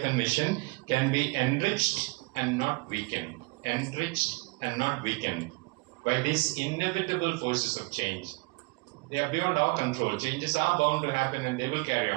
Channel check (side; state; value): left; quieter; 26.7 dB